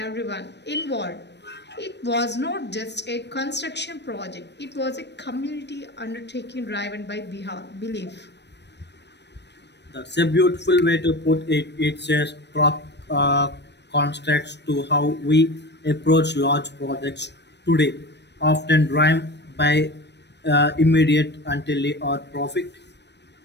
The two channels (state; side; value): late; right; 0.50 ms